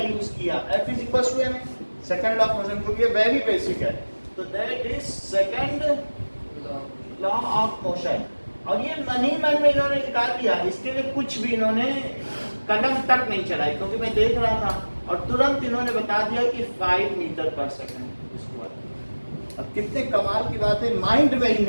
किया? F is equal to m, second law of motion, क्योंकि ये वेरी बेसिक है। तो that is second law of motion. और ये मन ही मन में इन्होंने निकाल दिया, इसके लिए कुछ भी इन्होंने कदम तक नहीं चलाई, क्योंकि मैं देख रहा था और तुरंत इन्होंने बता दिया कि 5 मीटर पर सेकंड स्क्वायर। अब कितने कमाल की बात है, माइंड में ही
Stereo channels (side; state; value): both; inverted; correlation -1.00